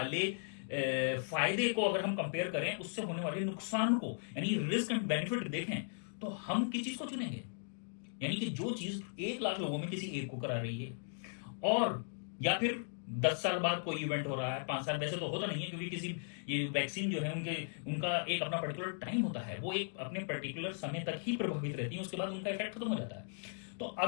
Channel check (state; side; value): silent; right; digital silence